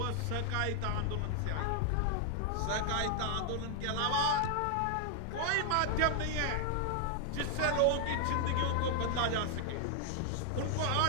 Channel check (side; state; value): both; different; correlation 0.00